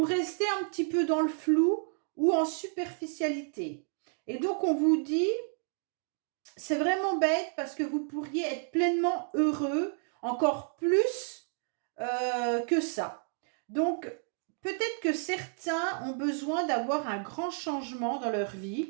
restez un petit peu dans le flou ou en superficialité. Et donc, on vous dit, c'est vraiment bête parce que vous pourriez être pleinement heureux, encore plus que ça. Donc, peut-être que certains ont besoin d'avoir un grand changement dans leur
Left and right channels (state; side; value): silent; left; 57 dB below the other